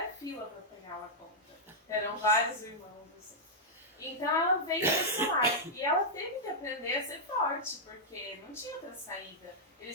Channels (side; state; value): both; normal; correlation -0.07